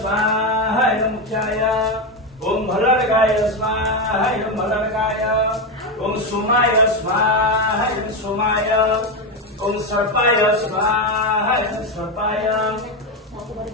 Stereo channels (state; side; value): normal; both; correlation 0.11